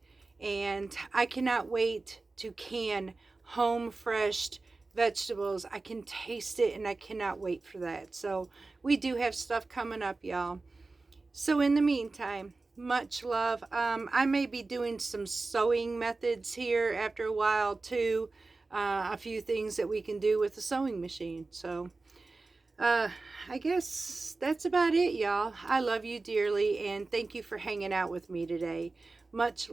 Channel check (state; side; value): quieter; left; 3.6 dB